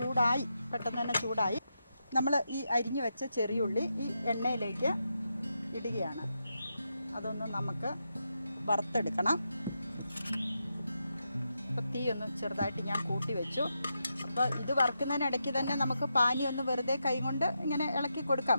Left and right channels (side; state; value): both; inverted; correlation -0.86